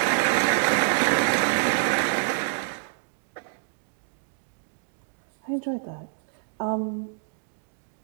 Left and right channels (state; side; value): silent; left; digital silence